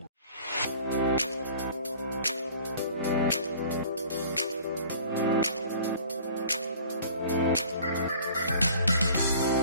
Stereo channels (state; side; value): inverted; both; correlation -0.48